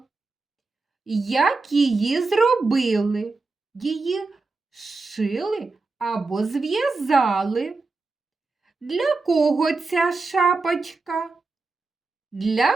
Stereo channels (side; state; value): left; quieter; 3.8 dB